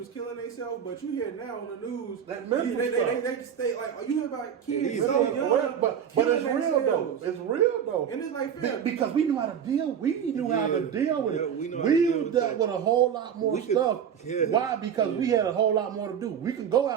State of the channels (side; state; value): left; quieter; 8.2 dB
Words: killing themselves, but you hear now on the news That mental they stay like you hear about kids Yeah, so yeah. young, But killing it's real though. themselves. It's real though. And it's like, fam, Because we knew how to deal. We knew how to Yeah. deal with Yeah, it. we know how to deal with dealt that. with a whole lot more We could- stuff. yeah. Why? Because we had a whole lot more to do. We can go